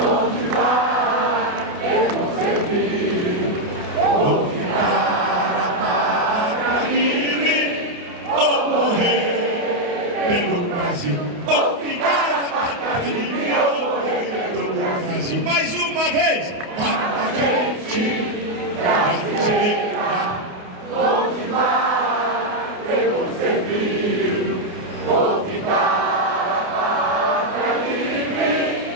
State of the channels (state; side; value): late; left; 28 ms